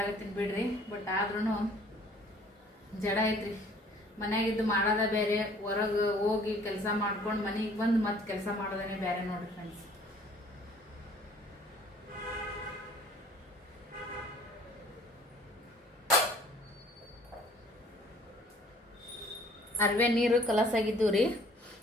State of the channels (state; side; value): normal; both; correlation 0.55